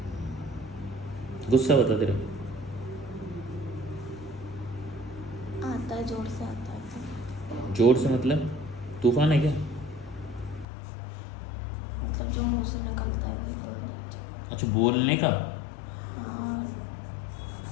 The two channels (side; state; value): right; drops out; at 10.7 s